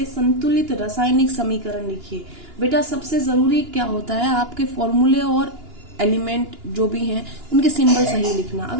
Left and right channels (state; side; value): late; left; 2.9 ms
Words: संतुलित रासायनिक समीकरण लिखिए। बेटा सबसे जरूरी क्या होता है, आपके फॉर्मूले और एलिमेंट जो भी हैं उनके सिंबल सही लिखना।